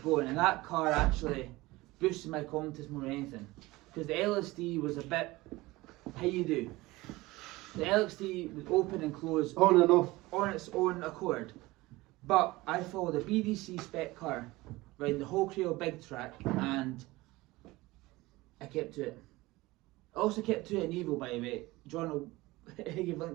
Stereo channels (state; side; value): quieter; left; 20.2 dB